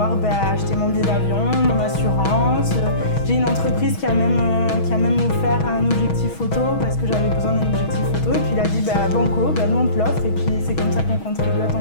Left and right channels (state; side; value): late; right; 6.3 ms